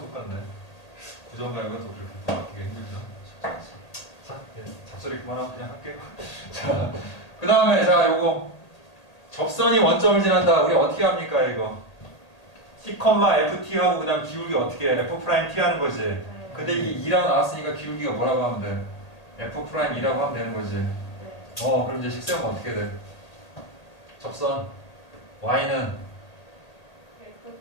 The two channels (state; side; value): late; right; 1.8 ms